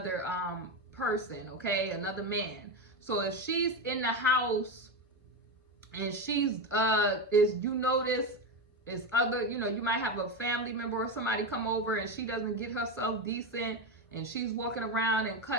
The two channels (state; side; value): normal; both; correlation 0.15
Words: person, okay, another man. So if she's in the house and she's is, you notice, is other, you know, you might have a family member or somebody come over and she doesn't get herself decent, and she's walking around and